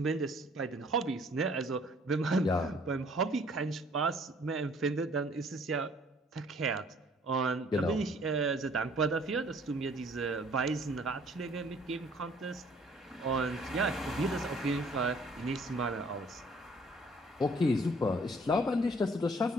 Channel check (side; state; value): both; normal; correlation 0.58